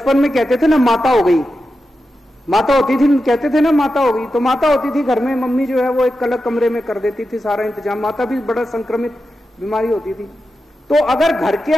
में कहते थे ना माता हो गई, माता होती थी, कहते थे ना माता हो गई। तो माता होती थी घर में, मम्मी जो है वो एक अलग कमरे में कर देती थी सारा इंतजाम। माता भी बड़ा संक्रमित बीमारी होती थी। तो अगर घर के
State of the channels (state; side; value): normal; both; correlation 0.90